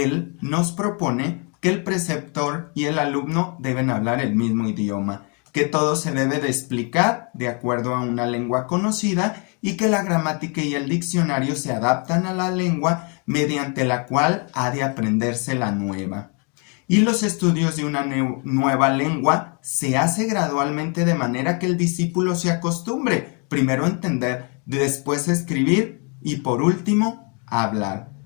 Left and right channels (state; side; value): quieter; right; 35.8 dB